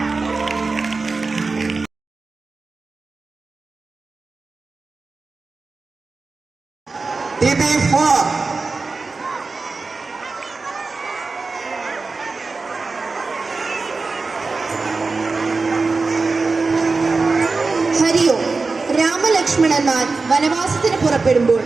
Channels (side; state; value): left; quieter; 4.0 dB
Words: ഹരി ഓം. രാമലക്ഷ്മണ ലക്ഷ്മണന്മാർ വനവാസത്തിന് പുറപ്പെടുമ്പോൾ